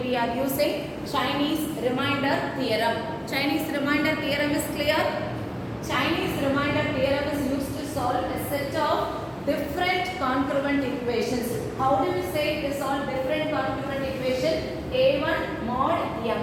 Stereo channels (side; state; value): both; identical; correlation 1.00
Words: are using Chinese remainder theorem. Chinese remainder theorem is clear? Chinese remainder theorem is used to solve a set of different congruent equations. How do we say to solve different congruent equation? A1 mod